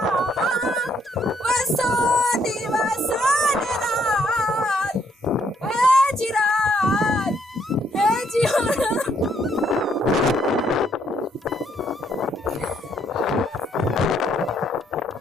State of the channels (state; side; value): normal; both; correlation 0.70